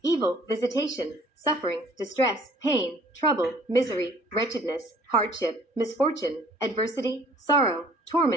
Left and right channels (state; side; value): normal; both; correlation 0.55